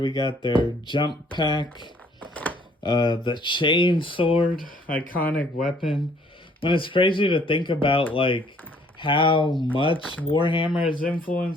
we got their jump pack, the chain sword, iconic weapon. When it's crazy to think about like how much Warhammer has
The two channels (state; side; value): normal; both; correlation 0.61